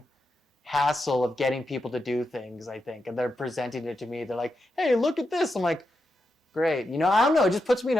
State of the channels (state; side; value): normal; both; correlation 0.86